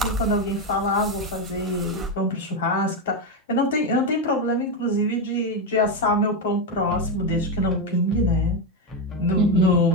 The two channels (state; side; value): normal; both; correlation 0.08